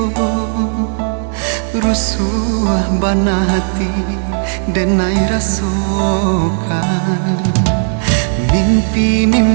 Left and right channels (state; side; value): silent; left; digital silence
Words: rusuh bana hati dan ai rasakan.